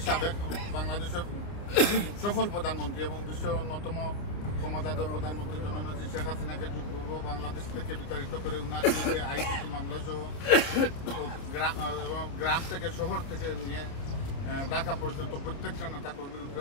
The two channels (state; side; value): late; right; 30 ms